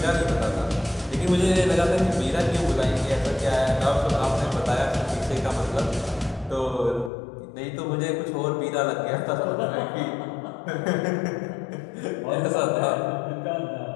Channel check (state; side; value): drops out; right; at 7.1 s